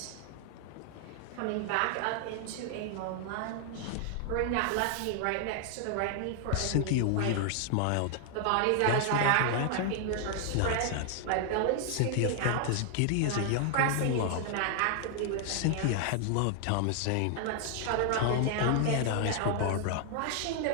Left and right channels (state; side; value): different; both; correlation 0.00